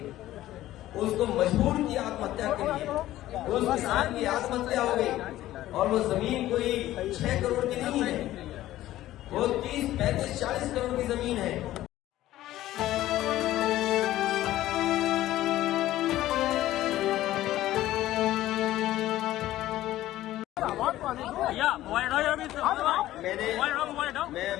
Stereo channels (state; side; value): quieter; right; 14.7 dB